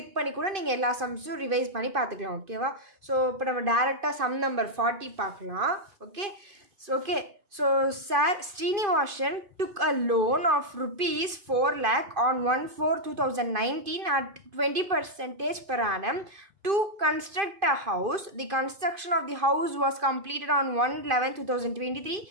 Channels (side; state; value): left; late; 2.5 ms